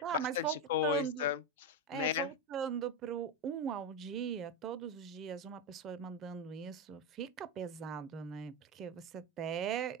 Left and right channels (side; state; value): both; normal; correlation 0.12